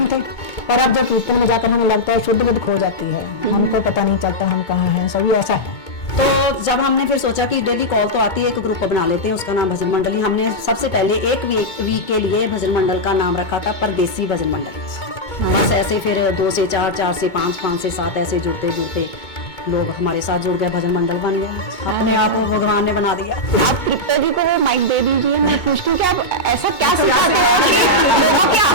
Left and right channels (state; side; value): late; right; 2.2 ms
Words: थे, पर अब जब कीर्तन में जाकर हमें लगता है शुद्ध बुद्ध खो जाती है, हमको पता नहीं चलता हम कहाँ हैं, सभी ऐसा है। तो जब हमने फिर सोचा कि डेली कॉल तो आती है, एक ग्रुप बना लेते हैं, उसका नाम भजन मंडली। हमने सबसे पहले एक वीक के लिए भजन मंडल का नाम रखा था परदेसी भजन मंडल। बस ऐसे फिर 2 से 4, 4 से 5, 5 से 7 ऐसे जुड़ते जुड़ते लोग हमारे साथ जुड़ गए, भजन मंडल बन गया। अपने आप को भगवान ने बना दिया। आप तृप्ता जी को वो माइक दे दीजिए। मैं पूछती हूँ कि आप ऐसा क्या सिखाते हो कि लोगों की